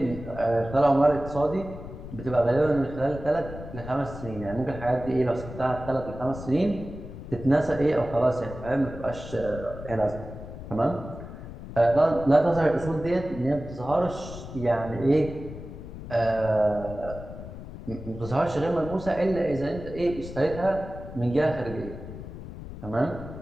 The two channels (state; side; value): noise; left; rumble, 12 dB below the sound